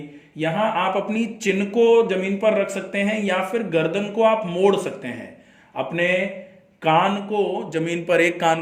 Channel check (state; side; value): identical; both; correlation 1.00